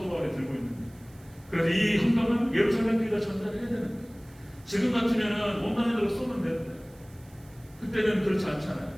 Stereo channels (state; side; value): noise; right; hiss, 27 dB below the sound